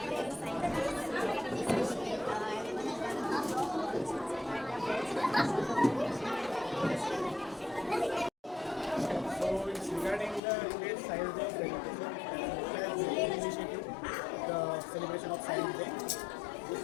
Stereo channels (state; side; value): drops out; right; at 10.4 s